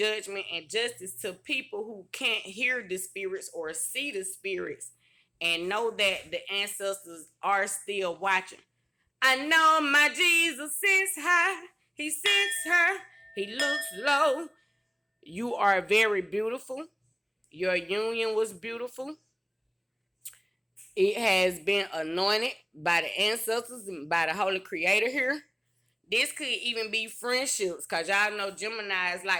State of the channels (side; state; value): both; identical; correlation 1.00